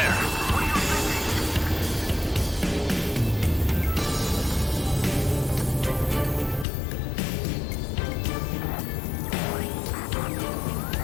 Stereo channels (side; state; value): right; drops out; at 6.7 s